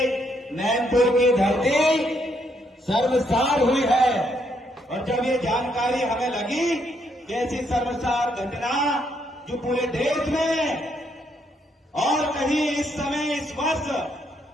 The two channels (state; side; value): normal; both; correlation 0.74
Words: नैनपुर की धरती सर्वसार हुई है और जब ये जानकारी हमें लगी कि ऐसी सर्वसार घटना जो पूरे देश में और कहीं इस समय, इस वर्ष